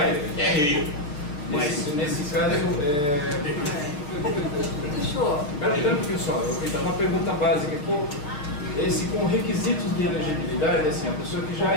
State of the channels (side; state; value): right; late; 6.6 ms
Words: é rio. Mas nesse caso, Fechou. Espera um pouquinho só, então, uma pergunta básica aqui. Esse com requisitos de elegibilidade, assim, a pessoa que já